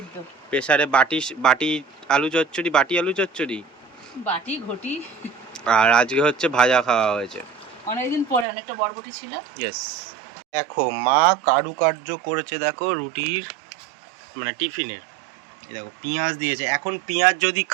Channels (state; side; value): drops out; left; at 8.5 s